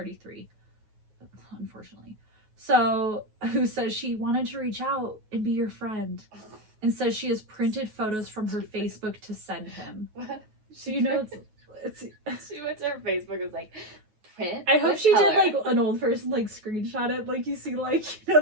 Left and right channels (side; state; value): left; late; 9.4 ms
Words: unfortunately. So, who says she wanted to reach out and be your friend, and says she has printed photos from her Facebook to send him. What? So you know it's she went to her Facebook and was like, print? I hope she did like an old person like screenshot it, like you see like, you know,